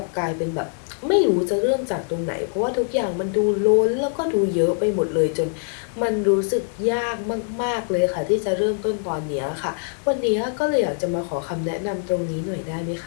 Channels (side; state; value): right; silent; digital silence